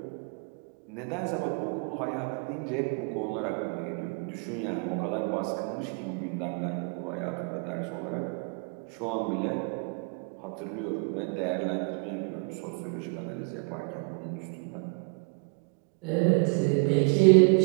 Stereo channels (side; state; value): left; quieter; 34.8 dB